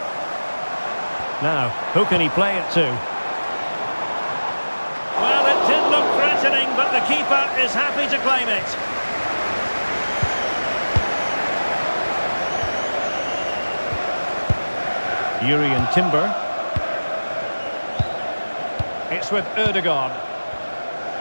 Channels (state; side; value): inverted; both; correlation -1.00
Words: Now, who can he play it to? Well, it did look threatening, but the keeper is happy to claim it. Yuri Timber. It's with Ødegaard.